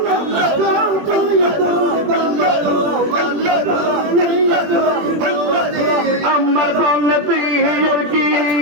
আমার বলতে কি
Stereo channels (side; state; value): left; late; 21 ms